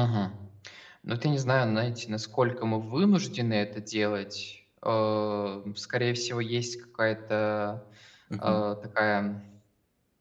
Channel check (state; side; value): identical; both; correlation 1.00